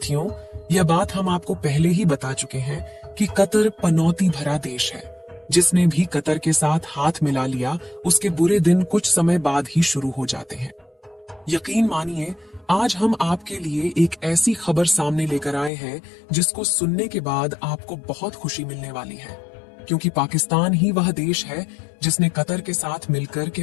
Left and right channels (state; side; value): drops out; right; at 15.7 s